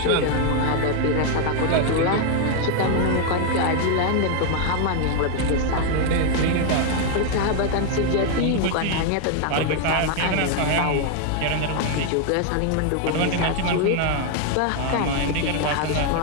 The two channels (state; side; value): different; both; correlation 0.00